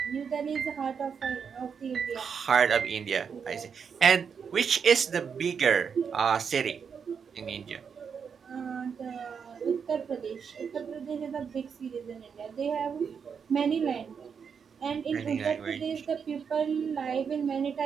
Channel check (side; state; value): left; quieter; 6.6 dB